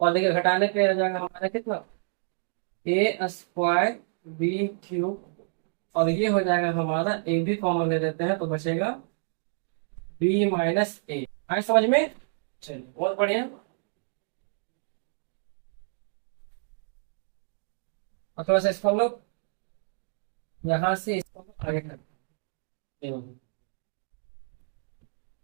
और देखिए घटाने पे हो जाएगा हमारा कितना ए स्क्वायर बी क्यूब, और ये हो जाएगा हमारा ए भी कॉमन ले लेते हैं तो बचेगा बी माइनस ए। आए समझ में? चलिए बहुत बढ़िया। और थोड़ा सा इसको हम लोग यहाँ से इसको हम लोग आगे करते हैं।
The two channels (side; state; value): left; silent; digital silence